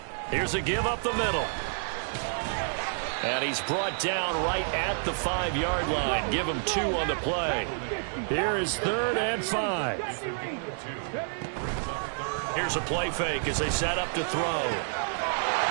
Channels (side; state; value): left; silent; digital silence